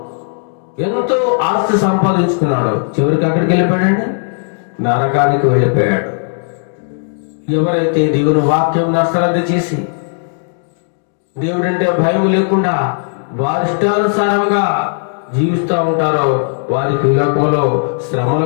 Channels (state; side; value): silent; right; digital silence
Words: ఎంతో ఆస్తి సంపాదించుకున్నాడు. చివరికి అక్కడికి వెళ్ళిపోయాడండి, నరకానికి వెళ్ళిపోయాడు. ఎవరైతే దేవుని వాక్యం అశ్రద్ధ చేసి, దేవుడంటే భయం లేకుండా వారి ఇష్టానుసారంగా జీవిస్తూ ఉంటారో, వారికి ఈ లోకంలో శ్రమలు